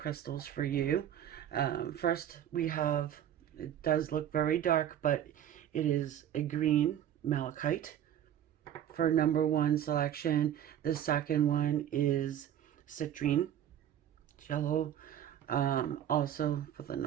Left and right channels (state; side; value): quieter; left; 10.5 dB